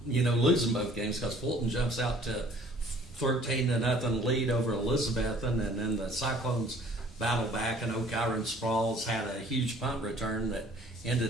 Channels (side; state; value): both; normal; correlation 0.54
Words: losing both games because Fulton jumps out to 13-0 lead over Elizabethton, and then the Cyclones battle back, and O'Kyron Sprawls had a huge punt return that